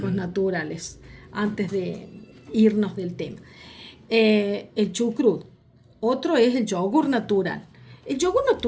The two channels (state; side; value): identical; both; correlation 1.00